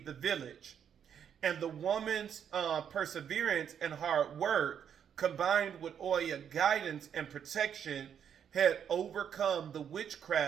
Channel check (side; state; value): left; quieter; 8.4 dB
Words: the village. And the woman's perseverance and hard work, combined with Oya's guidance and protection, had overcome the